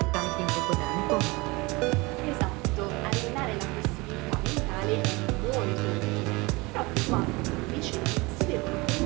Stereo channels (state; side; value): quieter; left; 24.3 dB